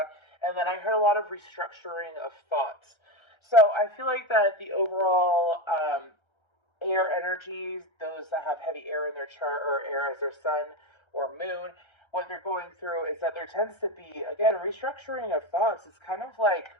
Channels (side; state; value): right; late; 1.3 ms